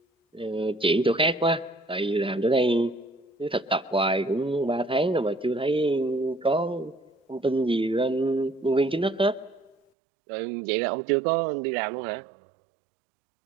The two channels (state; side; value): drops out; left; at 9.8 s